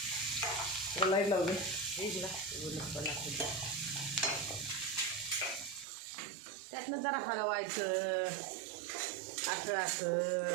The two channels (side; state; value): left; drops out; at 5.9 s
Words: लाईट लावू दे. त्यातनं जरा हलवायचं असं असं.